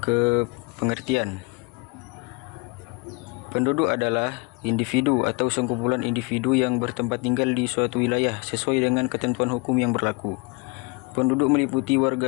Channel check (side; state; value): right; quieter; 27.9 dB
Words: ke pengertian. Penduduk adalah individu atau sekumpulan individu yang bertempat tinggal di suatu wilayah sesuai dengan ketentuan hukum yang berlaku. Penduduk meliputi